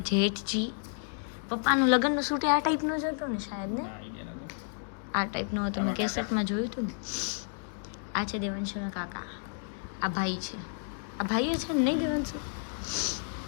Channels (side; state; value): right; silent; digital silence